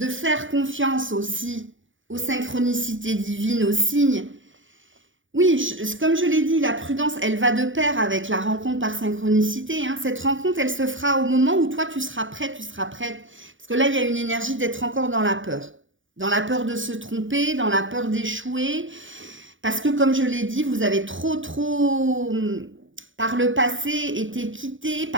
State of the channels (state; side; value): late; left; 0.56 ms